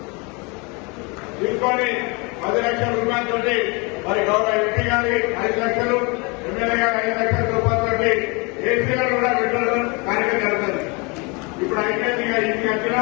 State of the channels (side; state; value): right; quieter; 29.5 dB